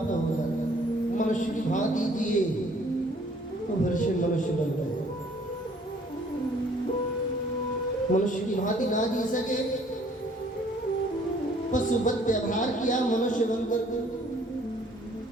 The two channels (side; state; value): both; normal; correlation 0.59